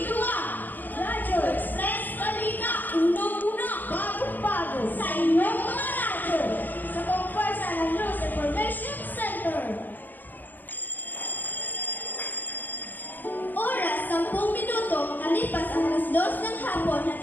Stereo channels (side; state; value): right; late; 0.087 ms